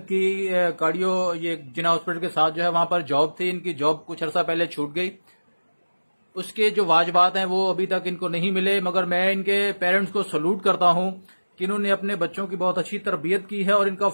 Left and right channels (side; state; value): both; inverted; correlation -1.00